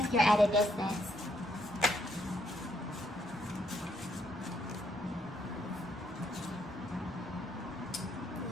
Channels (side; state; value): both; normal; correlation 0.73